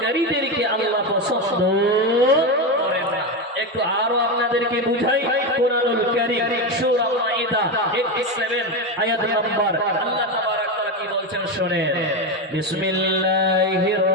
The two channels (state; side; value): normal; both; correlation 0.14